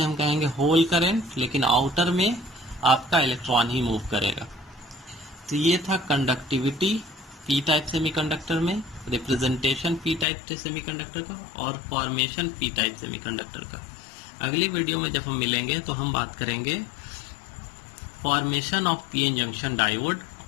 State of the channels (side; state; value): right; drops out; at 10.2 s